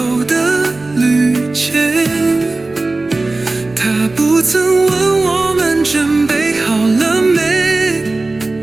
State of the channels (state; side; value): quieter; left; 3.2 dB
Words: 的旅程，它不曾问我们准备好了没，